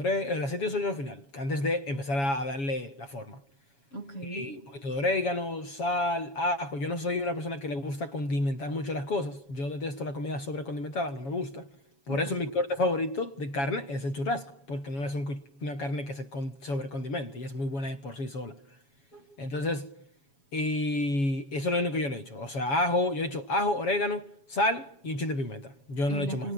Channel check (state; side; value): late; right; 7.2 ms